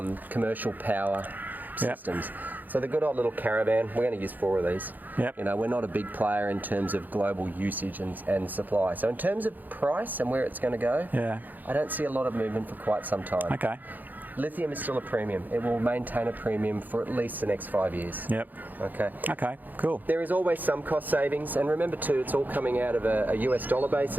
commercial power systems. So the good old little caravan, we're going to use 4 of these. You know, we're not a big player in terms of global usage and supply. So in terms of price and where it's going to go, I don't see a lot of movement for quite some time. Okay. Lithium is still a premium. It will maintain a premium for at least the next 5 years. Okay. Okay, cool. There is always some cost savings, and remember too, it's all coming out of a US dollar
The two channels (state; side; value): late; left; 0.085 ms